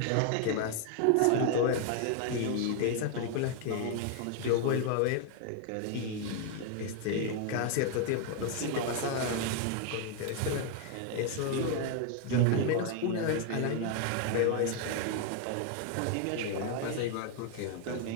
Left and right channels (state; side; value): different; both; correlation 0.00